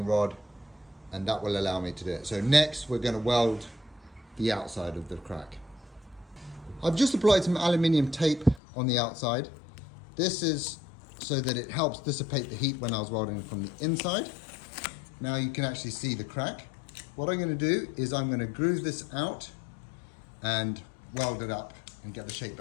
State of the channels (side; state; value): right; drops out; at 8.6 s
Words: rod, and that will allow me to do it. So next we're going to weld the outside of the crack. I've just applied some aluminium tape on the outside. This is so that it helps dissipate the heat when I was welding from the inside. Now you can actually see the crack. What I'm going to do is I'm going to groove this out and weld it up and get the shape